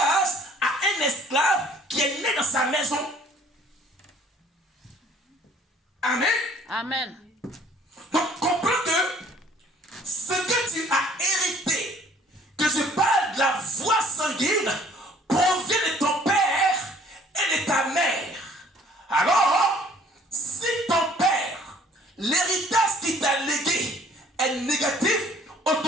à un esclave qui est né dans sa maison. Amen. Amen. Donc comprends que ce que tu as hérité, que je parle de la voie sanguine, provient de ton père et de ta mère. Alors, si ton père, l'héritage qu'il t'a légué est négatif,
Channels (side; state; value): both; normal; correlation 0.56